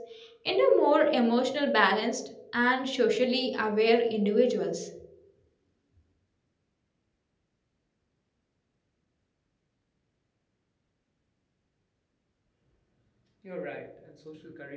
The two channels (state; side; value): identical; both; correlation 1.00